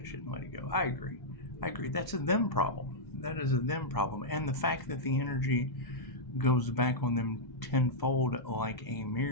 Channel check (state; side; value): late; right; 2.0 ms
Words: shit and let it go. I agree. That's a them problem. That is a them problem. And the fact that the energy goes back on them tenfold like a